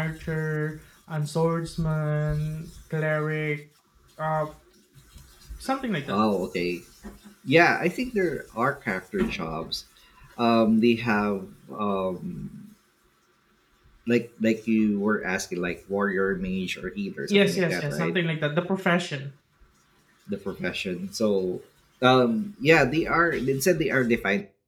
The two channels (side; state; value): both; identical; correlation 1.00